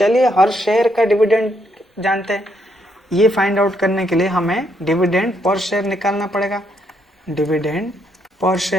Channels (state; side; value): normal; both; correlation 0.75